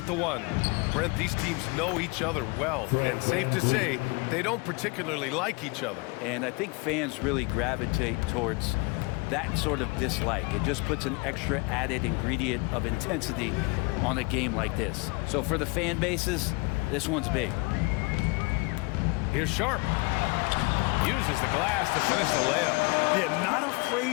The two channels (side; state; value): right; quieter; 27.7 dB